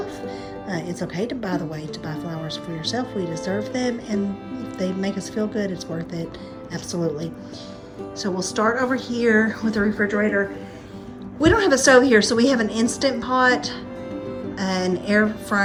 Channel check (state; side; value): identical; both; correlation 1.00